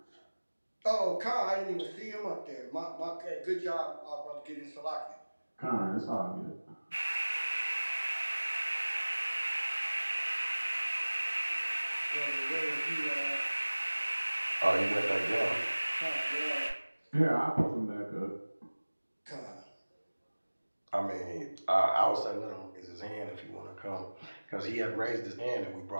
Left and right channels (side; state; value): both; inverted; correlation -1.00